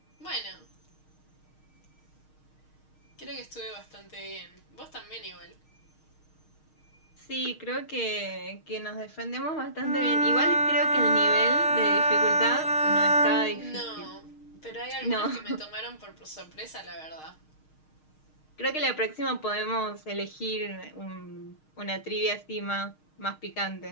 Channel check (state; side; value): late; right; 6.5 ms